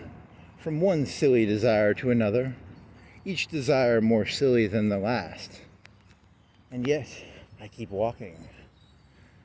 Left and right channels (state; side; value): identical; both; correlation 1.00